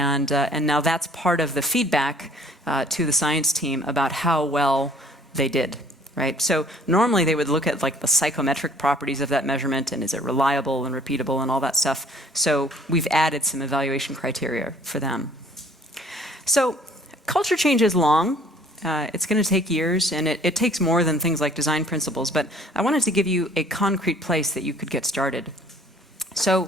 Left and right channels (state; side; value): normal; both; correlation 0.55